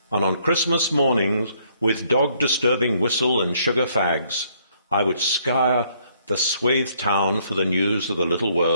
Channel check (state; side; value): inverted; both; correlation -0.67